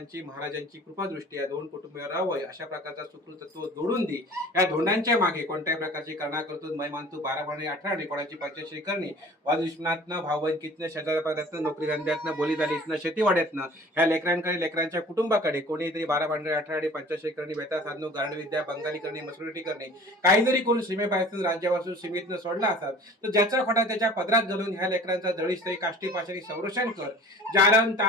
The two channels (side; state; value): both; normal; correlation 0.45